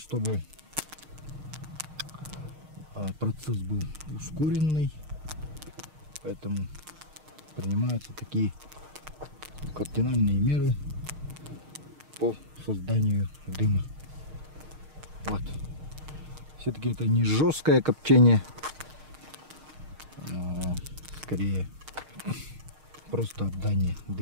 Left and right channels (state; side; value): late; left; 6.5 ms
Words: процесс был ускоренный. Поэтому принимаются такие кардинальные меры по созданию дыма. Вот. Все-таки это не жесткое копчение, а скорее просто обдание